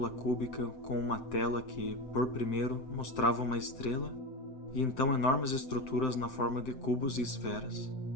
cúbica com uma tela que, por primeiro, mostrava uma estrela e então enormes estruturas na forma de cubos e esferas.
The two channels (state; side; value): late; right; 7.8 ms